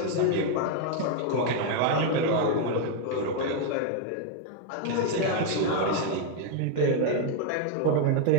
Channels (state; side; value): different; both; correlation 0.01